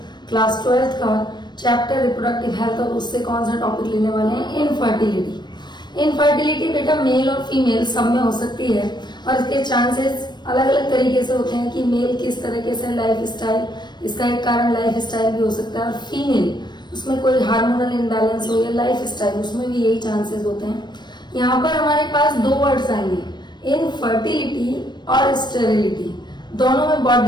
क्लास 12th का चैप्टर रिप्रोडक्टिव हेल्थ। और उससे कौन सा टॉपिक लेने वाले हैं? इनफर्टिलिटी। इनफर्टिलिटी बेटा मेल और फीमेल सब में हो सकती है और इसके चांसेस अलग अलग तरीके से होते हैं कि मेल किस तरीके से लाइफ स्टाइल, इसका एक कारण लाइफ स्टाइल भी हो सकता है, और फीमेल उसमें कोई हार्मोनल इम्बैलेंस हो या लाइफ स्टाइल, उसमें भी यही चांसेस होते हैं। यहाँ पर हमारे पास दो वर्ड्स आएंगे, इनफर्टिलिटी और स्टेरिलिटी। दोनों में बहुत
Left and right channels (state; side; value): late; right; 0.21 ms